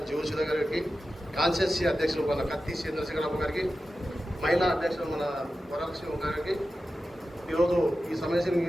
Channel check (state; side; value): normal; both; correlation 0.92